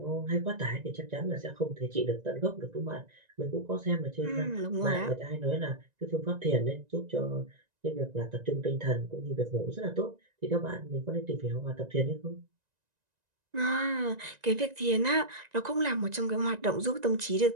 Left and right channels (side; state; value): left; late; 1.9 ms